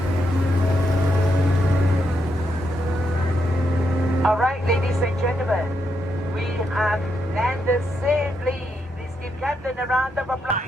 All right, ladies and gentlemen, we have landed safely. Please give Captain a round of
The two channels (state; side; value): normal; both; correlation 0.81